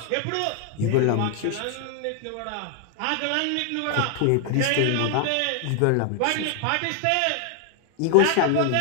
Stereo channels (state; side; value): different; both; correlation 0.00